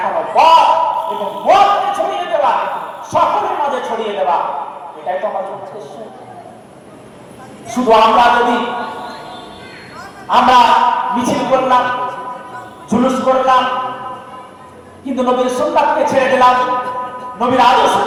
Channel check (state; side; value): identical; both; correlation 1.00